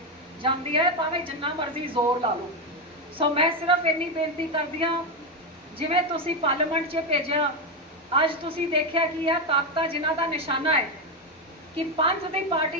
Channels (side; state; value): both; normal; correlation 0.09